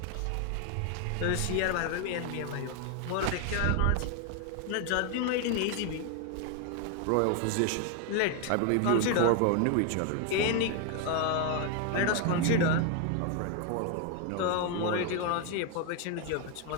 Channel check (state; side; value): different; both; correlation 0.01